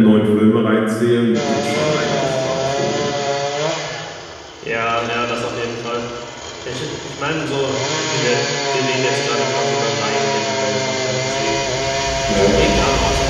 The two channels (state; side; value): identical; both; correlation 1.00